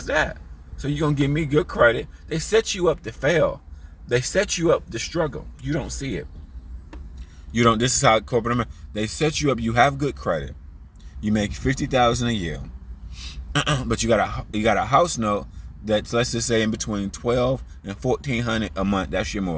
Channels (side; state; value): both; identical; correlation 1.00